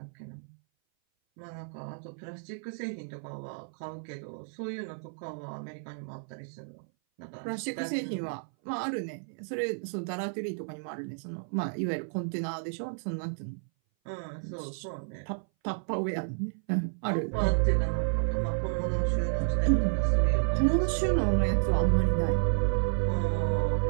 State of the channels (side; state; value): left; silent; 57 dB below the other